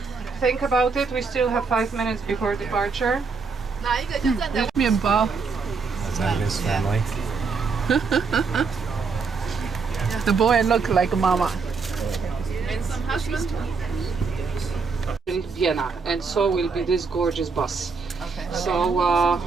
Think about it. We still have 5 minutes before departure. Mienbao. That's Agnes' family. The boy look like mama. And some husband. In Vienna, and so will be this gorgeous bus. Okay. So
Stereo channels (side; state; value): left; quieter; 4.9 dB